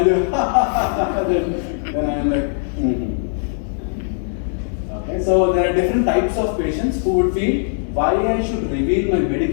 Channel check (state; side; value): silent; right; 66 dB below the other